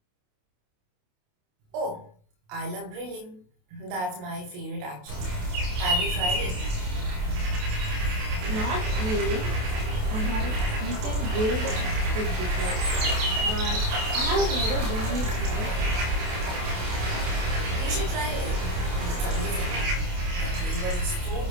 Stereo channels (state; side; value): late; left; 28 ms